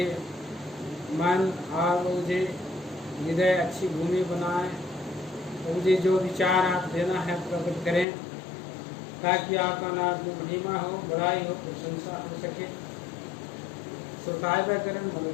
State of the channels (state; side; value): drops out; right; at 8.1 s